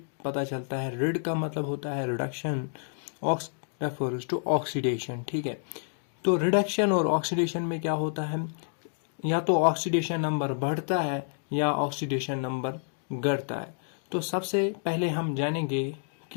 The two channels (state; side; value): silent; right; digital silence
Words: पता चलता है, रिड का मतलब होता है reduction, ox refers to oxidation. ठीक है, तो रिडक्शन और ऑक्सीडेशन में क्या होता है, या तो ऑक्सीडेशन नंबर बढ़ता है या ऑक्सीडेशन नंबर घटता है। तो सबसे पहले हम जानेंगे